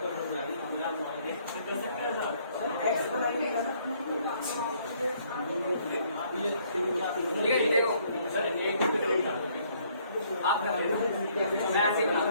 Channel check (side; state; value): both; inverted; correlation -0.65